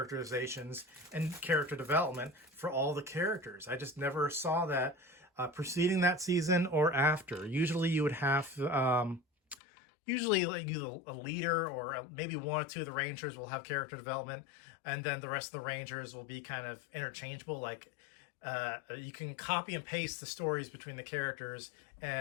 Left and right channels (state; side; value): drops out; right; at 9.6 s